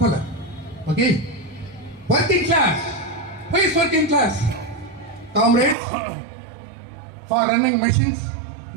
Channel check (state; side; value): drops out; left; at 5.8 s